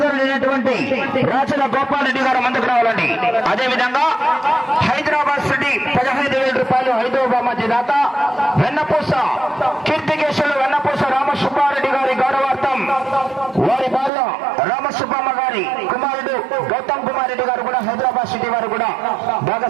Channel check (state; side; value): drops out; left; at 14.1 s